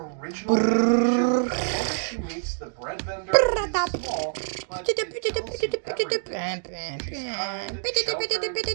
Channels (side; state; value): left; silent; digital silence